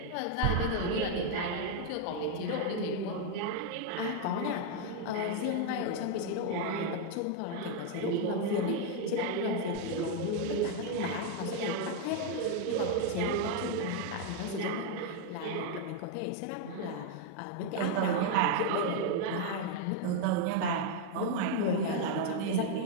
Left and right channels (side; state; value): both; different; correlation 0.01